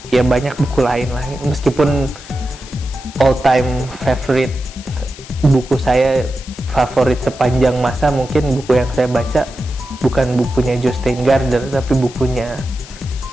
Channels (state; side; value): noise; left; hiss, 18 dB below the sound